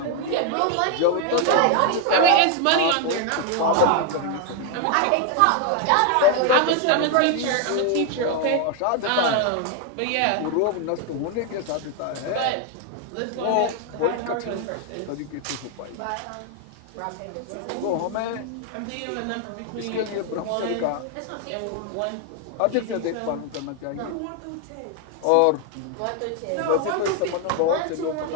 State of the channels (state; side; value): different; both; correlation 0.01